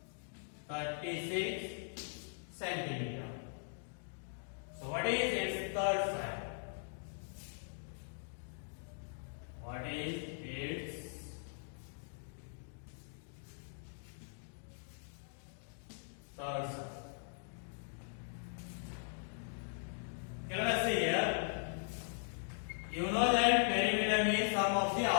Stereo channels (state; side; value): silent; right; digital silence